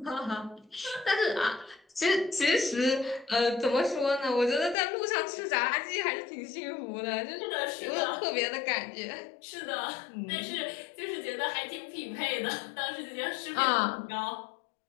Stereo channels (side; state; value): right; drops out; at 4.8 s